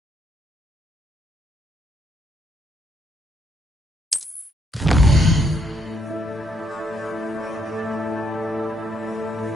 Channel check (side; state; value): both; normal; correlation 0.74